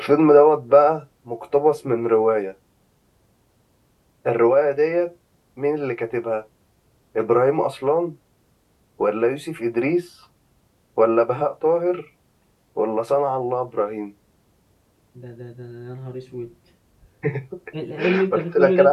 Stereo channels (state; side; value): identical; both; correlation 1.00